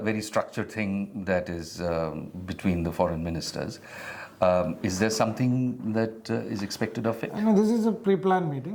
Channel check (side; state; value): both; identical; correlation 1.00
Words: very structured thing that is between the foreign ministers. Is there something that is expected of it? I mean, this is a pre-planned